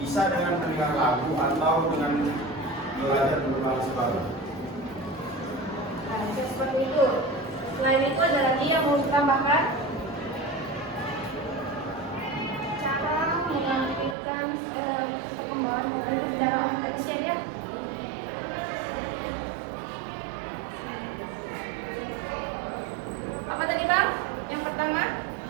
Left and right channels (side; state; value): left; drops out; at 14.2 s